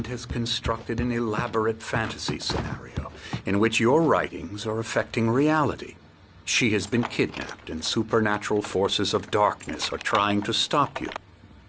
has constructed an elaborate fantasy scenario in which your writings are affecting reality. She has been kidnapped and supernatural forces of darkness are trying to stop you.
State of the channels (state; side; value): identical; both; correlation 1.00